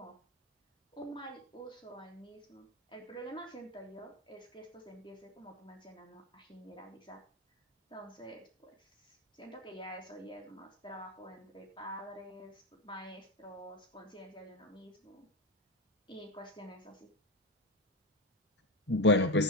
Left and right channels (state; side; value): normal; both; correlation 0.15